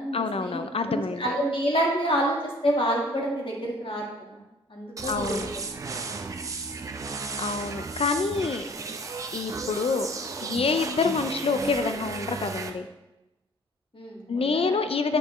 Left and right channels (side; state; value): both; normal; correlation 0.51